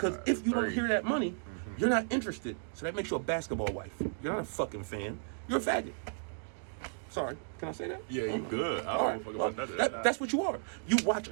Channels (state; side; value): silent; left; digital silence